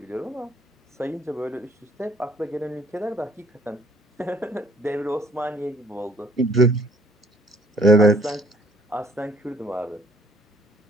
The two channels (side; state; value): both; normal; correlation 0.60